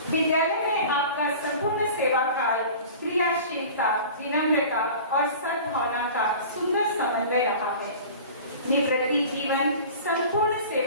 विद्यालय में आपका संपूर्ण सेवा काल क्रियाशीलता, विनम्रता और सद्भावना का सुंदर समन्वय रहा है। निवृत्ति जीवन संपूर्ण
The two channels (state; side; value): inverted; both; correlation -0.40